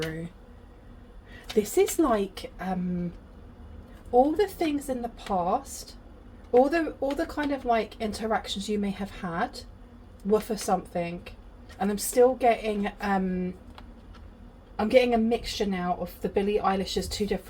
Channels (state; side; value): identical; both; correlation 1.00